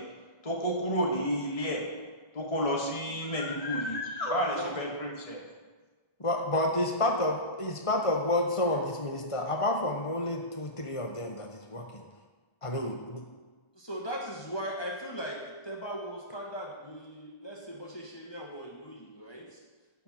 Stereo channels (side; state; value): right; late; 1.5 ms